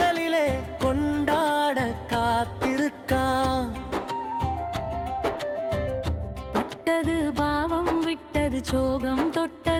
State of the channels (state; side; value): identical; both; correlation 1.00